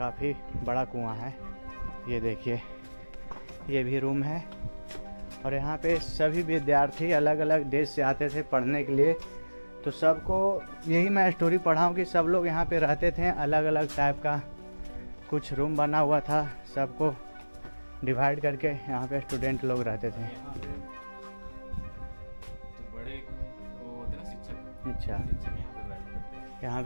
बड़ा कुआं है। ये देखिए ये भी रूम है। और यहाँ पे सभी विद्यार्थी अलग अलग देश से आते थे पढ़ने के लिए। तो सबको यही मैं स्टोरी पढ़ा हूँ कि सब लोग यहाँ पे रहते थे, अलग अलग टाइप का कुछ रूम बना हुआ था, सबको डिवाइड करके यहाँ पे स्टूडेंट लोग रहते थे। तो बड़े वो होते ना शिक्षक, अच्छा यहाँ पे बैठते थे। यहाँ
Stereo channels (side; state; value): both; inverted; correlation -1.00